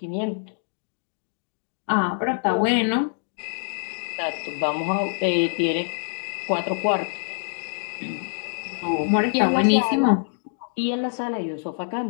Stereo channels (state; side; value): silent; right; digital silence